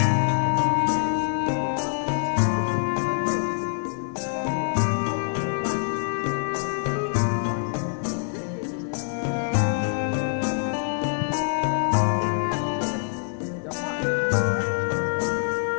since then, gaming companies have been looking into ways to emulate the formula for other platforms, including mobile devices. This game is one of those examples that encapsulates the fun of the franchise while giving it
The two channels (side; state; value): right; silent; 62 dB below the other